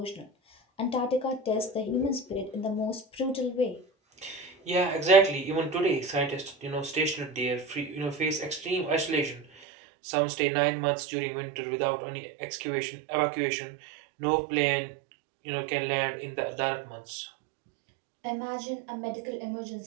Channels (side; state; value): left; drops out; at 9.5 s